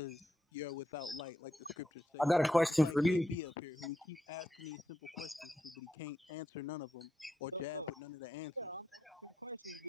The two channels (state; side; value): normal; both; correlation 0.82